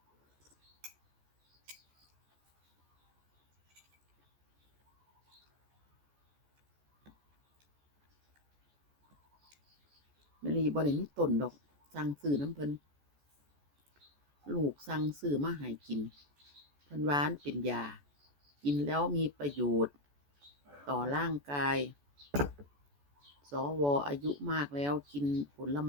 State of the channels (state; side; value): late; left; 14 ms